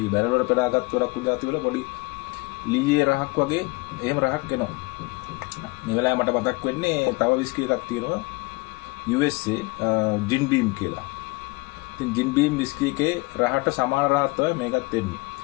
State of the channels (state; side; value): quieter; right; 24.5 dB